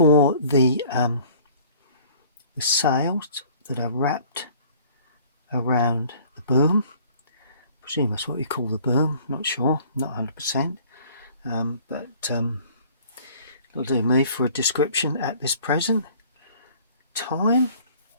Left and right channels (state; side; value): inverted; both; correlation -0.52